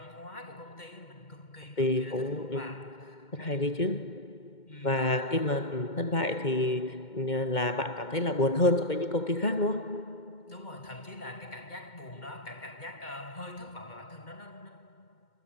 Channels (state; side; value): late; right; 2.2 ms